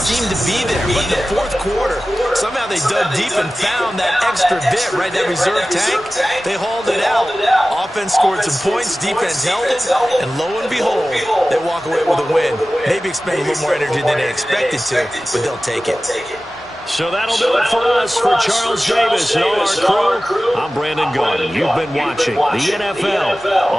to be there. But in the fourth quarter, somehow they dug deep and found that extra bit, right, that reserve tank. They hauled it out. Offense scored some points, defense held it, and lo and behold, they walk away with a win. Maybe expend a little more energy than they expected to, but they'll take it. So that'll do it for us. For Charles Davis and all our crew, I'm Brandon Garden. You've been watching the NFL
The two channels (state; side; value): normal; both; correlation 0.96